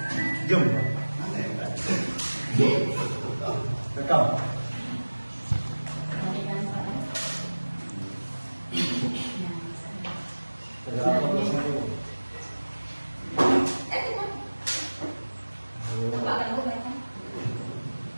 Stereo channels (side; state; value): both; inverted; correlation -1.00